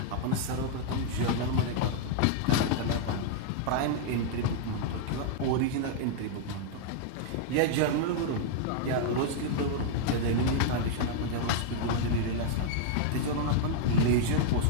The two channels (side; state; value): both; different; correlation -0.01